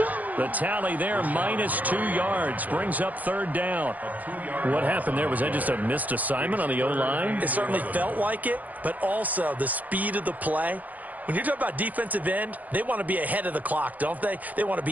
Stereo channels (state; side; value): late; left; 0.079 ms